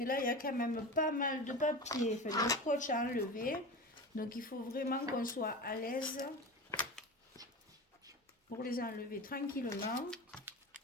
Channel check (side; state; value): both; normal; correlation 0.29